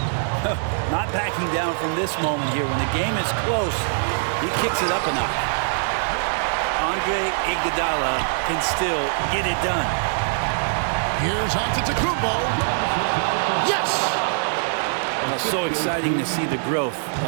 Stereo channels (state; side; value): silent; left; 58 dB below the other